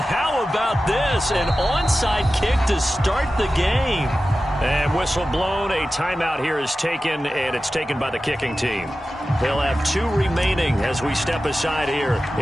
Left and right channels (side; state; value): both; normal; correlation 0.94